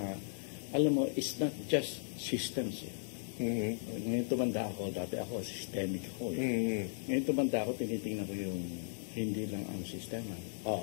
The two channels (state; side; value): silent; right; digital silence